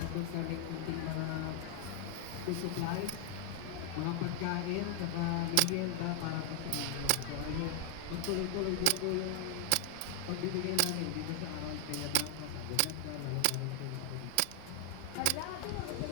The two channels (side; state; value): both; different; correlation 0.00